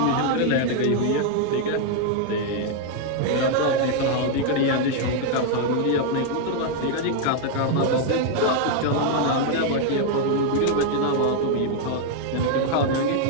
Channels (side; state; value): both; different; correlation 0.00